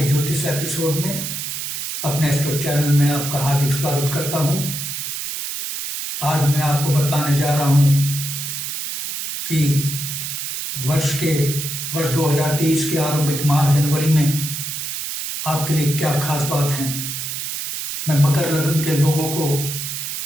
ज्योतिष एपिसोड में अपने एस्ट्रो चैनल में आपका हार्दिक स्वागत करता हूं। आज मैं आपको बताने जा रहा हूं कि वर्ष 2023 के आरंभिक माह जनवरी में आपके लिए क्या खास बात है। मैं मकर लग्न के लोगों को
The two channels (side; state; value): right; noise; hiss, 5 dB below the sound